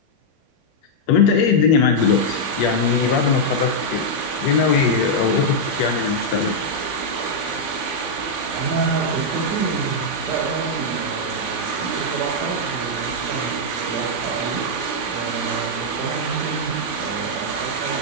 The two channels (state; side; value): late; right; 3.5 ms